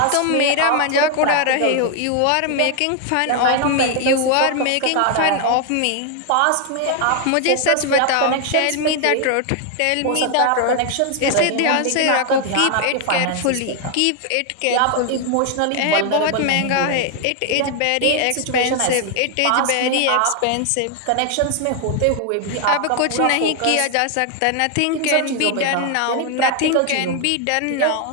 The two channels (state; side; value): different; both; correlation 0.00